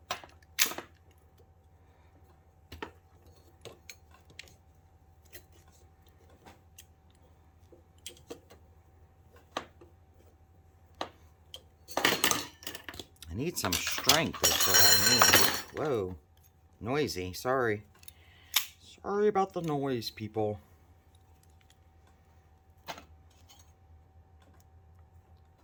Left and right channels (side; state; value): both; identical; correlation 1.00